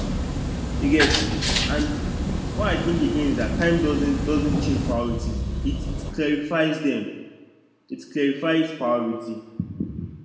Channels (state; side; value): identical; both; correlation 1.00